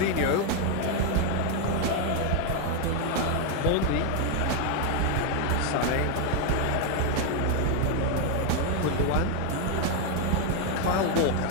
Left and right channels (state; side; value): different; both; correlation 0.01